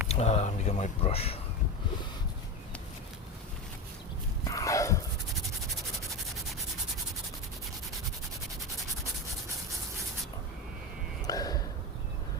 Let me get my brush.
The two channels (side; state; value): both; normal; correlation 0.20